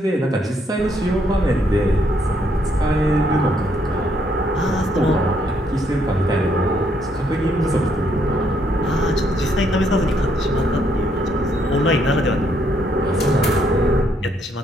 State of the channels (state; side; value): normal; both; correlation 0.72